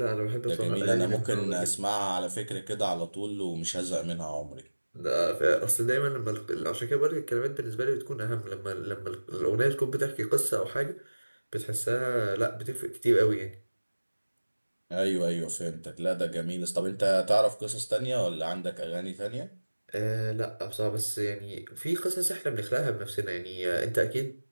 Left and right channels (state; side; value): inverted; both; correlation -1.00